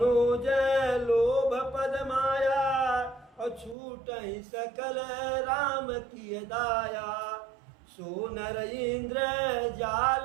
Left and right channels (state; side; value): drops out; left; at 3.8 s